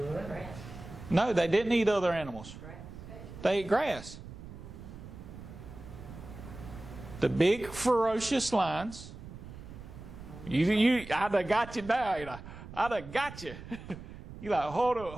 the Grass. No, they didn't eat other animals. Grass. They ate grass. The big ferocious lions. I'd have got you now. I'd have got you. You like, hold up now.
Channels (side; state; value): right; noise; rumble, 13 dB below the sound